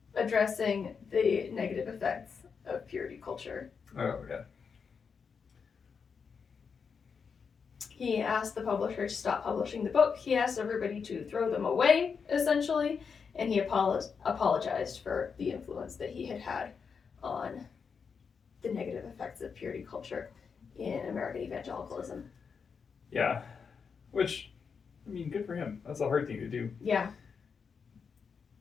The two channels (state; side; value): quieter; right; 5.9 dB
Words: addressing the negative effects of purity culture. Oh, yeah. He asked the publisher to stop publishing the book. He asked everybody to throw them away, essentially, and he apologized for the influence that he had had on the negative effects of purity culture in American evangelicalism. Yeah. Which, I mean, good for him. That's a hard thing to do. Yeah.